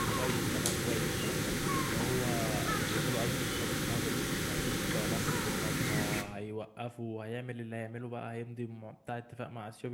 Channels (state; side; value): identical; both; correlation 1.00